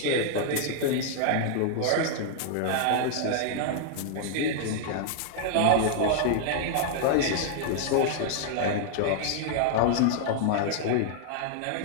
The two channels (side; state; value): both; different; correlation -0.01